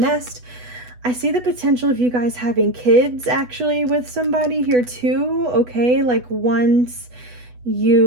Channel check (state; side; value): late; left; 8.1 ms